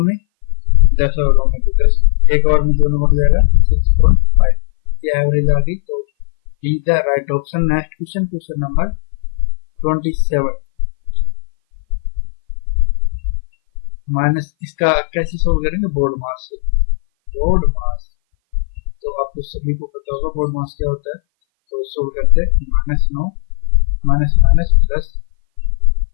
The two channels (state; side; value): silent; right; 59 dB below the other